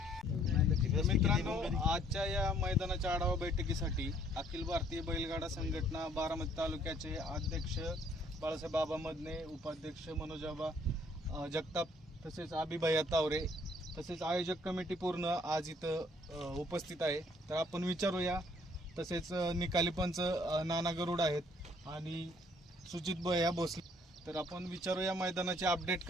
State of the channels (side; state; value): both; normal; correlation 0.63